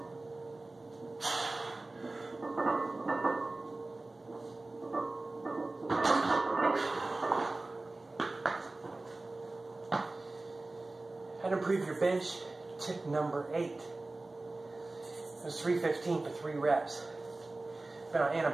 How to improve your bench, tip number 8. It was 315 for 3 reps. Been on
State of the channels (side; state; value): left; quieter; 3.1 dB